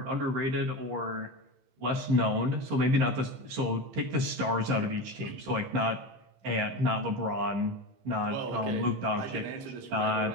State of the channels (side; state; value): left; late; 15 ms